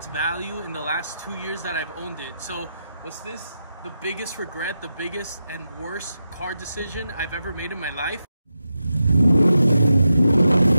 value in the last 2 years that I've owned it. So what's this? The biggest regret, the biggest and worst car decision I've ever made in my life.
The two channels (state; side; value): inverted; both; correlation -0.87